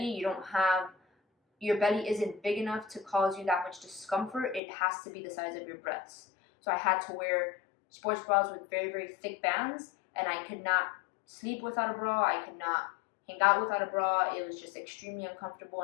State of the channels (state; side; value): drops out; right; at 4.6 s